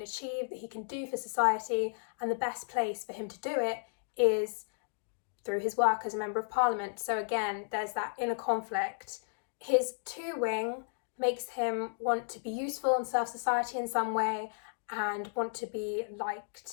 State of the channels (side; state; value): right; silent; digital silence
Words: achieve, that he can do for society, and the best place for him to do it is through his work as a Member of Parliament. So again, there's that inner conflict. His 2 wing makes him want to be useful and serve society in some way and want to be